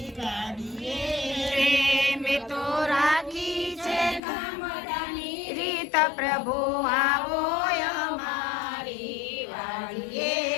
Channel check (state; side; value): drops out; right; at 4.2 s